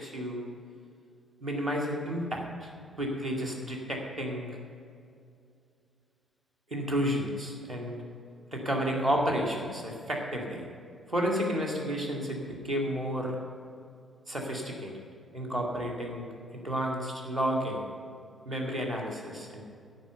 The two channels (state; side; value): normal; both; correlation 0.60